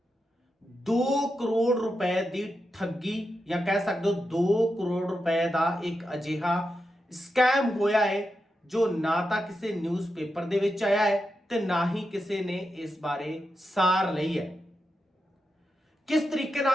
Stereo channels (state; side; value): normal; both; correlation 0.88